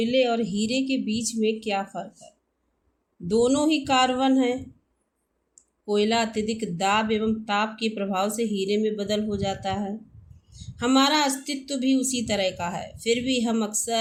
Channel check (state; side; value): identical; both; correlation 1.00